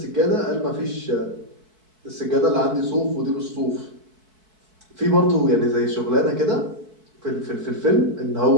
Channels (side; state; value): left; late; 4.6 ms